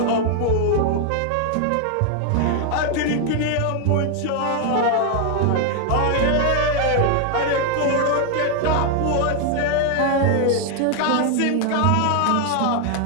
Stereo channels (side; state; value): both; different; correlation 0.00